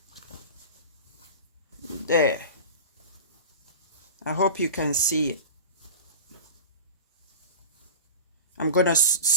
there, I hope you can see it. I'm gonna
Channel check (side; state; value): both; inverted; correlation -0.31